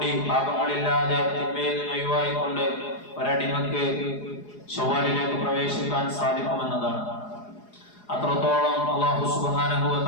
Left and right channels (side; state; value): right; late; 4.8 ms